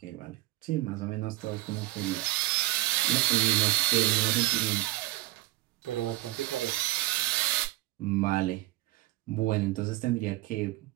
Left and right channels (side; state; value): left; quieter; 18.3 dB